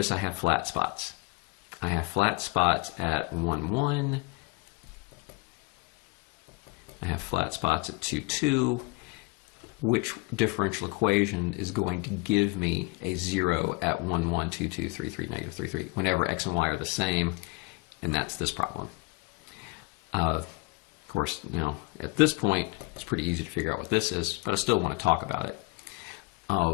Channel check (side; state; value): right; quieter; 26.4 dB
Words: I have flat spots. I have flat spots at 1, 1. I have flat spots at 2, 2. Which differential equation is going to give me a 0 at 1, 1, 2, 2, 3, 3, negative 3, 3, whenever x and y are the same, and that's this problem. Of course, at this point, it's pretty easy to figure out what this is, but I still want to talk about it.